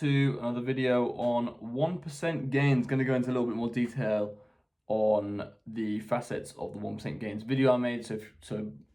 another video on 1% gains. Going to go into a little bit more detail on the facets of the 1% gains video I made. So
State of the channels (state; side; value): identical; both; correlation 1.00